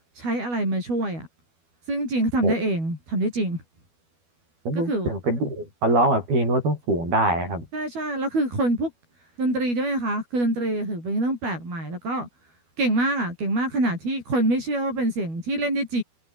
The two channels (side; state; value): left; late; 12 ms